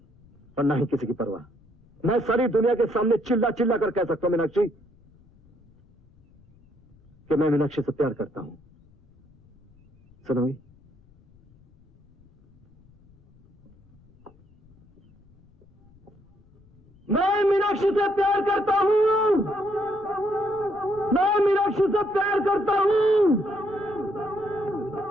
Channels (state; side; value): noise; left; rumble, 29 dB below the sound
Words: और ना ही किसी की परवाह। मैं सारी दुनिया के सामने चिल्ला चिल्ला कर कह सकता हूं मीनाक्षी कि मैं मीनाक्षी से प्यार करता हूं। सुनोगी? मैं मीनाक्षी से प्यार करता हूँ। मैं मीनाक्षी से प्यार करता हूँ।